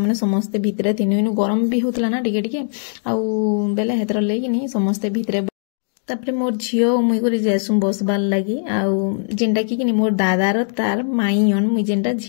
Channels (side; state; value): right; silent; digital silence